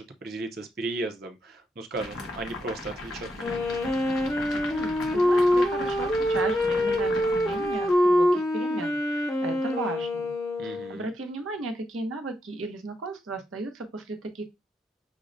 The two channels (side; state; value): both; normal; correlation 0.82